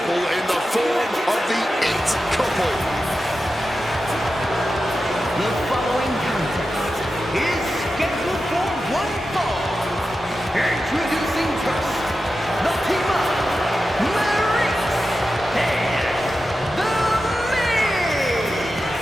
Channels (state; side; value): normal; both; correlation 0.92